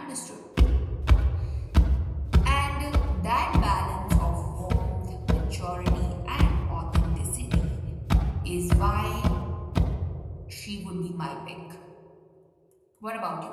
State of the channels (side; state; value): both; identical; correlation 1.00